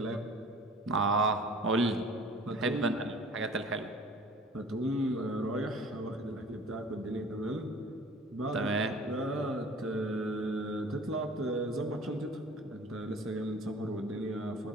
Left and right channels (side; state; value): both; normal; correlation 0.46